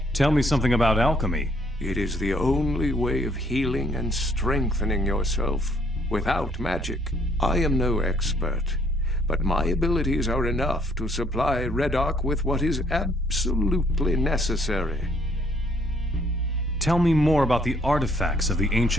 Tell me something about alchemy. It is the only way of healing and strengthening yourself without magic. I am no expert, but my abilities are enough to supply Reddock with what is absolutely necessary. Tell me more about the artifacts of the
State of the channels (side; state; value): both; normal; correlation 0.65